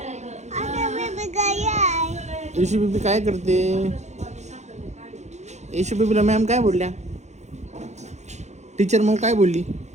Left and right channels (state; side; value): late; left; 0.33 ms